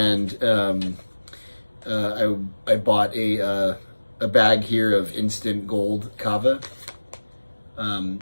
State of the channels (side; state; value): both; inverted; correlation -1.00